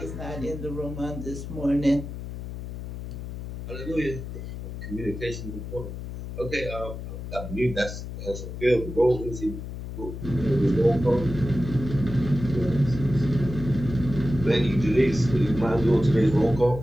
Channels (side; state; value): left; noise; hum, 8 dB below the sound